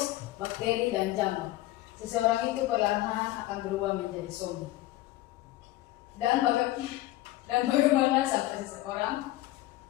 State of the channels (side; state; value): right; quieter; 16.5 dB